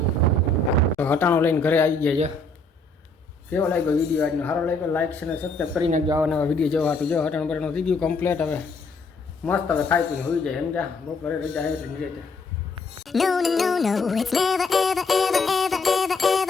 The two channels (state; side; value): quieter; right; 3.2 dB